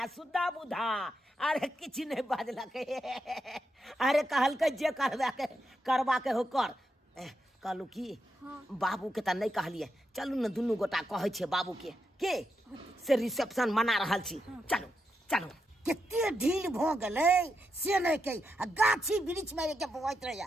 सुधा बुधा अरे किछ नहीं बाजलक अरे कहल के जे करवा के हो कर कहलू की बाबू के त नहीं कहलिए चलू न दुनू गोटा कहै छे बाबू के से रिसेप्शन मना रहल छी चलो चलो केते ढील भ गेलै से नहीं कही आ गाछी वृक्ष में के बवैत रहिया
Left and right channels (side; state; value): both; normal; correlation 0.84